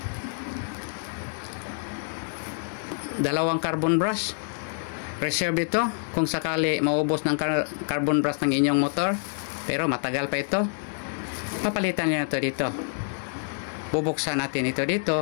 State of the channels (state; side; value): silent; right; digital silence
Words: Dalawang carbon brush. Reserve ito kung sakali maubos ng carbon brush ng inyong motor. Pero matagal pa ito. Papalitan nyo na ito dito. Bubuksan natin ito